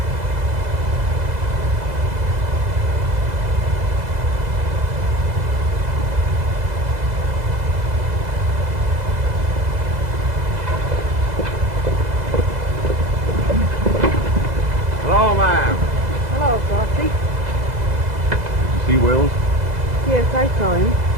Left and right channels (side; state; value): left; late; 2.0 ms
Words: Hello, ma'am. Hello, Frosty. Did you see Wills? Yes, I saw him.